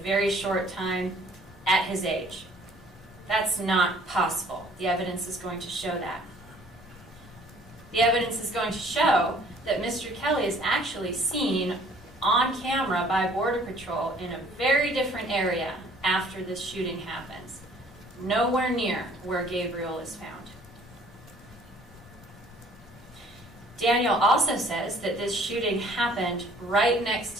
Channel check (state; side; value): normal; both; correlation 0.56